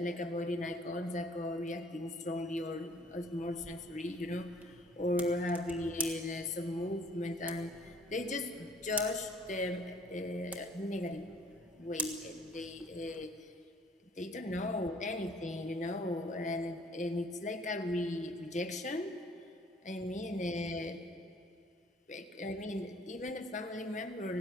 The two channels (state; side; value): normal; both; correlation 0.58